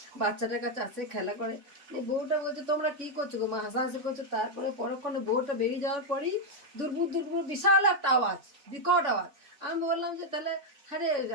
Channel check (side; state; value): left; late; 3.6 ms